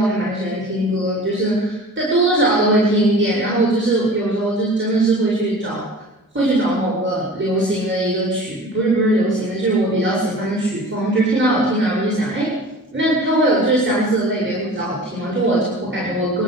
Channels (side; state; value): both; normal; correlation 0.41